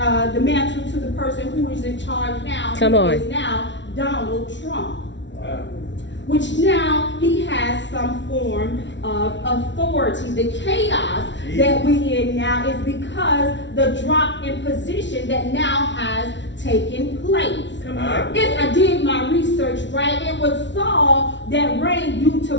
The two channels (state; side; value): late; right; 0.53 ms